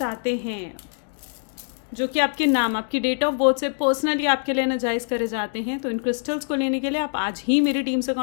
हैं जो कि आपके नाम, आपकी डेट ऑफ बर्थ से पर्सनली आपके लिए एनर्जाइज करे जाते हैं, तो इन क्रिस्टल्स को लेने के लिए आप आज ही मेरी टीम से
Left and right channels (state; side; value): silent; right; digital silence